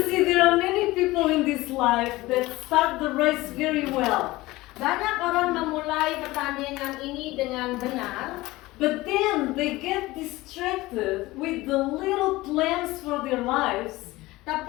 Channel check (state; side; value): quieter; right; 19.3 dB